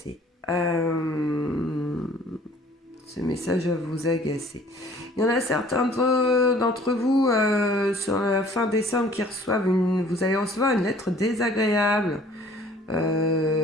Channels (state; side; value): normal; both; correlation 0.53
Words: Ce message va vous agacer. Il y en a certains d'entre vous sur la fin décembre qui reçoivent vous allez recevoir une lettre désagréable